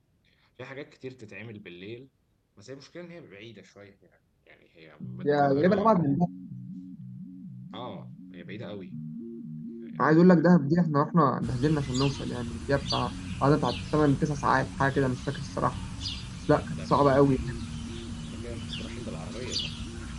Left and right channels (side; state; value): both; identical; correlation 1.00